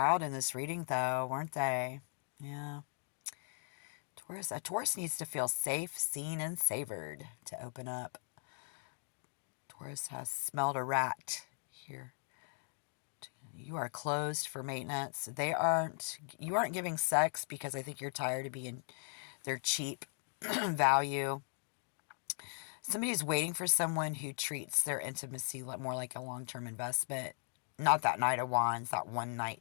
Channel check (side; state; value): right; silent; 52 dB below the other